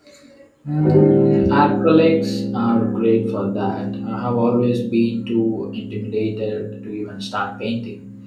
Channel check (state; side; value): identical; both; correlation 1.00